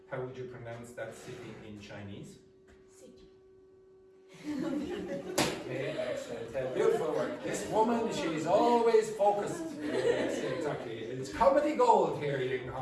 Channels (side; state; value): both; identical; correlation 1.00